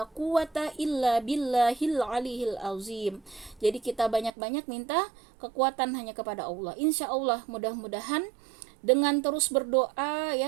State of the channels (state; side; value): drops out; left; at 4.3 s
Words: quwata illa billahil aliyil azim. Jadi kita banyak-banyak minta kekuatan hanya kepada Allah. Insya Allah mudah-mudahan dengan terus berdoa